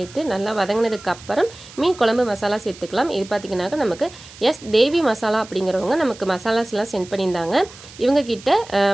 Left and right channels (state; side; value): noise; right; hiss, 19 dB below the sound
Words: நல்லா வதங்கினதுக்கு அப்புறம் மீன் குழம்பு மசாலா சேர்த்துக்கலாம். இது பார்த்திங்கனாக்கா நமக்கு தேவி மசாலா அப்படிங்கிறவங்க நமக்கு மசாலாஸ்லாம் சென்ட் பண்ணியிருந்தாங்க. இவங்கக்கிட்ட